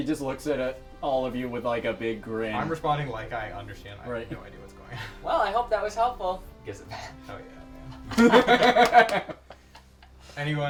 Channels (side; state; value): both; identical; correlation 1.00